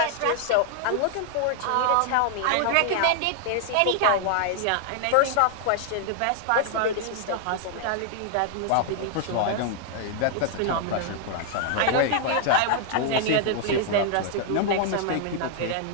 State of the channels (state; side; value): different; both; correlation 0.00